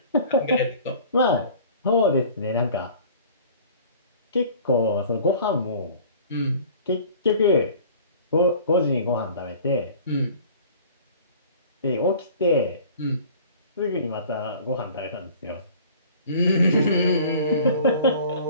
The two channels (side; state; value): both; inverted; correlation -0.47